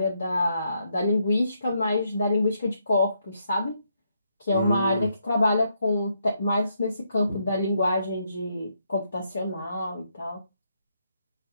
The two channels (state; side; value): inverted; both; correlation -0.77